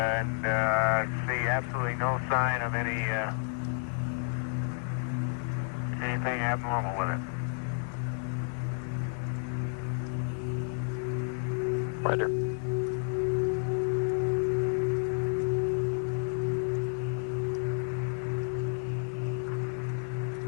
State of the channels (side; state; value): right; silent; digital silence